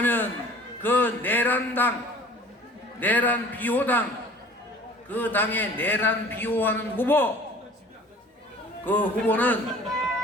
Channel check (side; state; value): both; normal; correlation 0.47